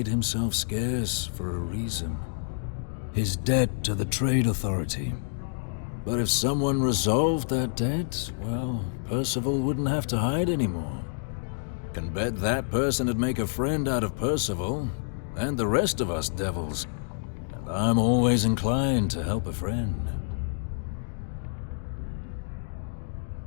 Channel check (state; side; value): silent; right; digital silence